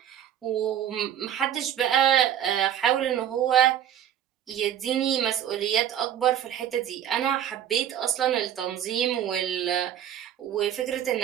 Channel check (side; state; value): left; quieter; 10.3 dB